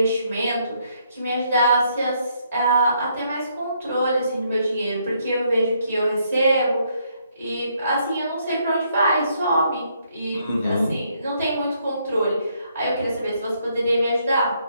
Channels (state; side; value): inverted; both; correlation -0.72